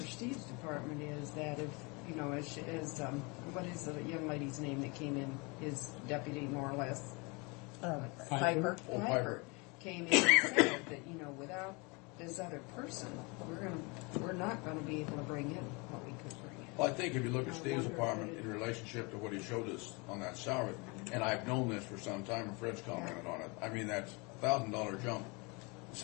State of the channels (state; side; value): quieter; right; 29.0 dB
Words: Steve's department is that if, you know, as what is the young lady's name that came in, his deputy more or less? Piper. Piper came in and said that, you know, without this other person, we're not gonna be able to bring in what we could bring in. Well, I think if you look at Steve's department in relationship to what he showed us on that salary, and I've known this for some time, and Fred's commented on it, I mean, that $1,000 jump in